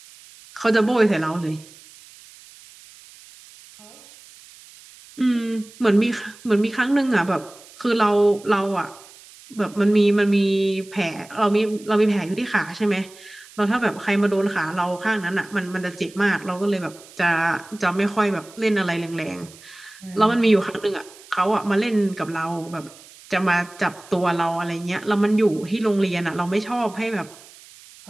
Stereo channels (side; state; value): right; noise; hiss, 22 dB below the sound